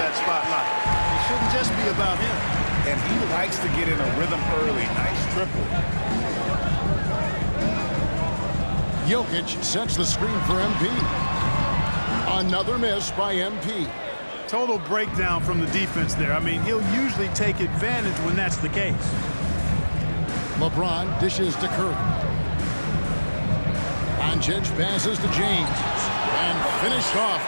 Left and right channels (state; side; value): inverted; both; correlation -1.00